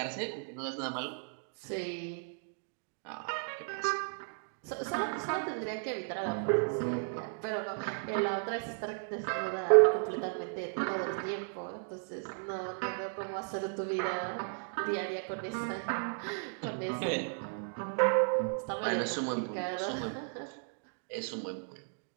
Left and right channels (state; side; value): silent; left; 55 dB below the other